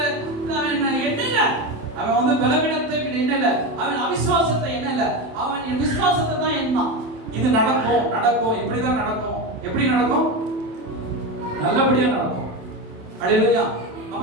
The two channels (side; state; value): left; late; 28 ms